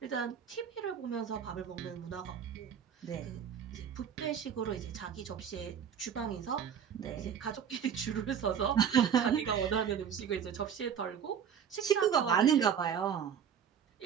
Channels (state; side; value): quieter; left; 8.0 dB